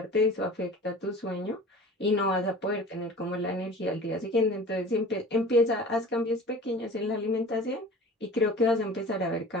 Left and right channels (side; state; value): both; normal; correlation 0.41